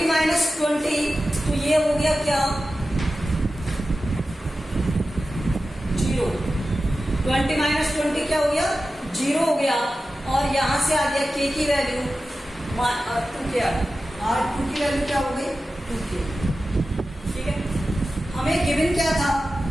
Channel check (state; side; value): normal; both; correlation 0.94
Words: माइनस 20, तो ये हो गया क्या 0। 20 माइनस 20 क्या हो गया, 0 हो गया। और यहां से आ गया k की वैल्यू 2k, R2 की वैल्यू क्या हो गई 2k। ठीक है, हमें गिवन क्या था,